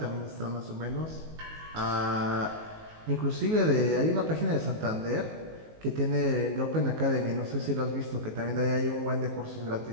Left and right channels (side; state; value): left; late; 19 ms